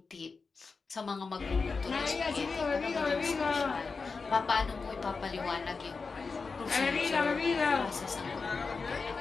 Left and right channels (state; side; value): quieter; right; 4.6 dB